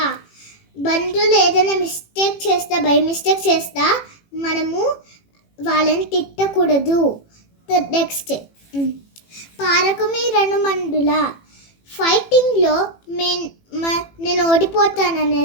బంధువులు ఏదైనా మిస్టేక్ చేస్తా, బై మిస్టేక్ చేస్తా మనము వాళ్ళని తిట్టకూడదు. నెక్స్ట్, పారకుమి రణమండుల. ఫైటింగ్లో నేను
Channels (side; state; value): right; late; 18 ms